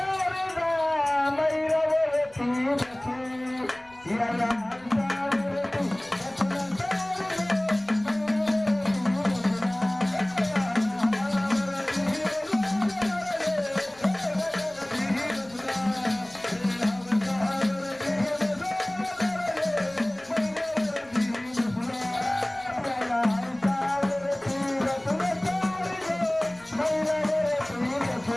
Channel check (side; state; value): left; noise; rumble, 28 dB below the sound